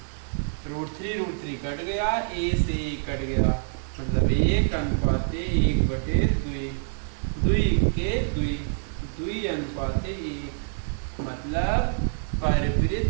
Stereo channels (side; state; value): left; silent; digital silence